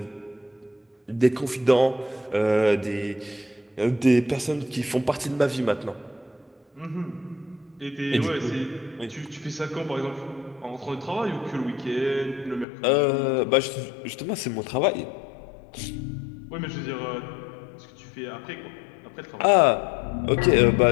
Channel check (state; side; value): drops out; right; at 12.7 s